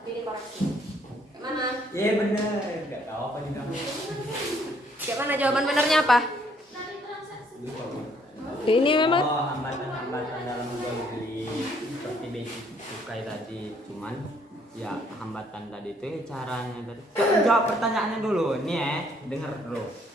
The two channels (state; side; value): normal; both; correlation 0.66